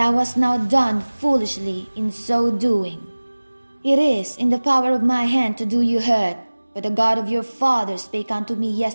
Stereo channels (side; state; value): both; inverted; correlation -1.00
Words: hast now done foolishly in so doing. It is in the power of my hand to do you hurt, but the God of your father spake unto me